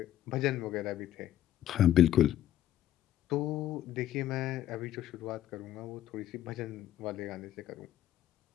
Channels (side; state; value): right; quieter; 12.3 dB